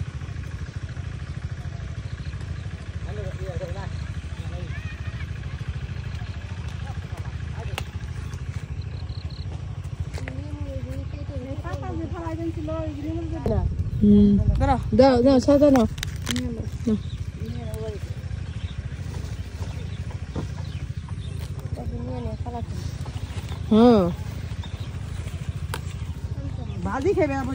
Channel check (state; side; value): identical; both; correlation 1.00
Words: দাও দাও সাদা নাও। হ্যাঁ ভাজি খেবে